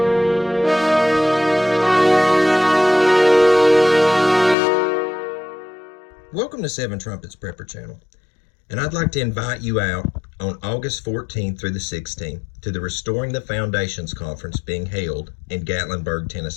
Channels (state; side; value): drops out; right; at 4.5 s